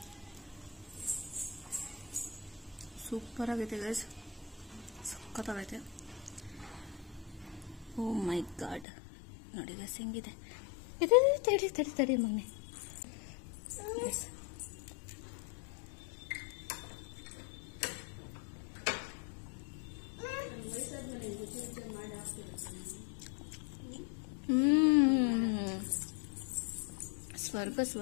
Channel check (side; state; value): right; drops out; at 8.8 s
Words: ಸೂಪರ್ ಆಗೈತೆ ಗೈಸ್, ಸಕ್ಕತ್ತಾಗೈತೆ. ಓ ಮೈ ಗಾಡ್ ನೋಡಿ ಗೈಸ್ ಹೆಂಗಿದೆ. ತಡಿ ತಡಿ ತಡಿ ಮಗನೆ. ಸ್ವರ್ಗ